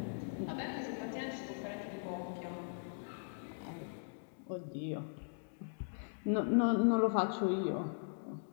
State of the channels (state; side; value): silent; right; digital silence